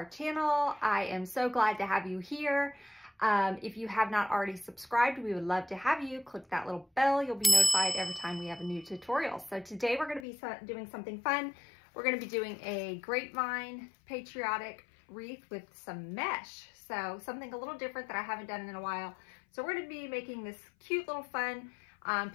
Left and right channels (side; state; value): right; drops out; at 10.2 s